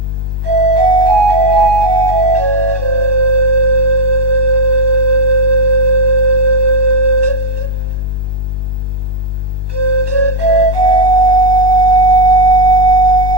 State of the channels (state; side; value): late; left; 1.2 ms